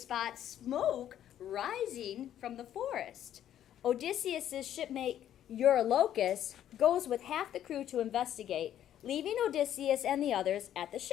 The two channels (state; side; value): quieter; right; 11.0 dB